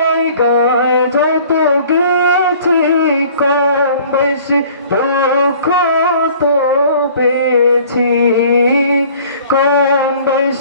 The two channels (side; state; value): both; inverted; correlation -0.51